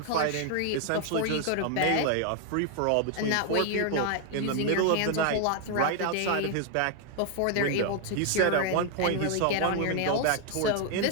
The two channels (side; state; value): both; different; correlation 0.00